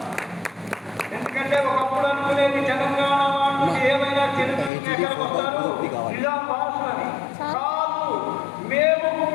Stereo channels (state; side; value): drops out; right; at 4.7 s